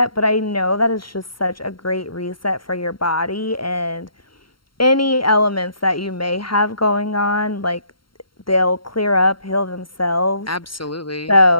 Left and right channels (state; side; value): late; right; 0.73 ms